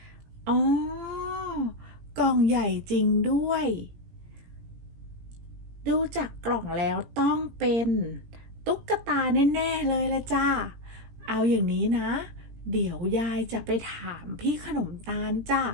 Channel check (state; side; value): late; left; 17 ms